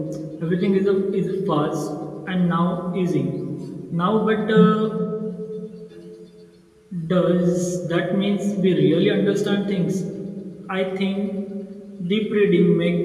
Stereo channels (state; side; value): identical; both; correlation 1.00